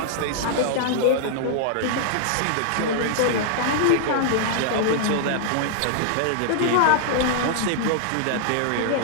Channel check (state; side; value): different; both; correlation -0.01